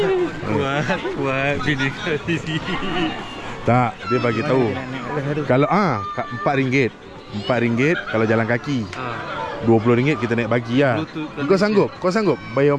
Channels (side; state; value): both; identical; correlation 1.00